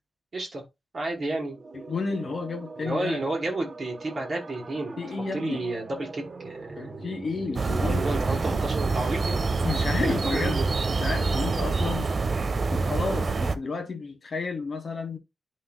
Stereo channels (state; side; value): normal; both; correlation 0.89